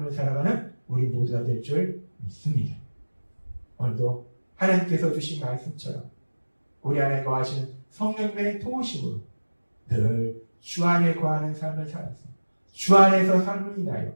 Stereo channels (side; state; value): both; inverted; correlation -1.00